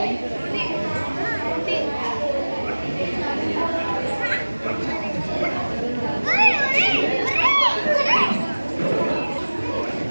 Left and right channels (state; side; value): inverted; both; correlation -1.00